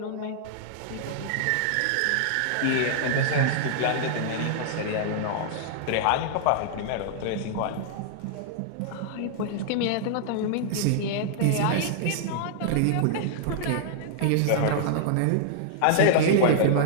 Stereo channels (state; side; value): different; both; correlation -0.01